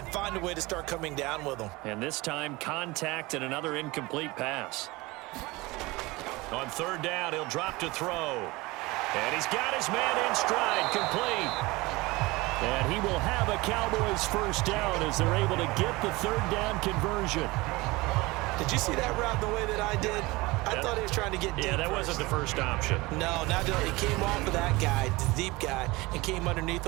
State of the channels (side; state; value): left; quieter; 22.2 dB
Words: find a way to start coming down with them. And this time, contact and another incomplete pass. On 3rd down, he'll drop to throw. And he's got his man in stride, complete. And he will have a Cowboys 1st down as they're able to get the 3rd down conversion. Did you see that route the way that I did? I thought he was trying to get deep. Yeah, that wasn't the first option. No, not he came off of that guy, the deep guy, and came underneath